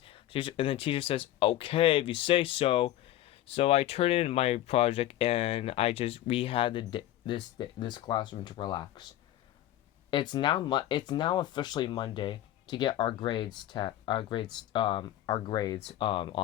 And the teacher says, "Okay, if you say so." So I turned in my project and we had this classroom to relax. It's now officially Monday to get our grades on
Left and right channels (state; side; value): quieter; right; 13.5 dB